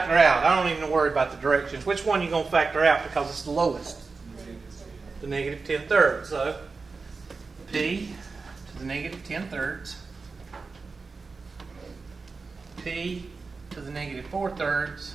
out? I don't even worry about the directions. Which one you going to factor out because it's the lowest? The negative 10/3. So, P to the negative 10/3. P to the negative 4/3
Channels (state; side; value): quieter; left; 4.3 dB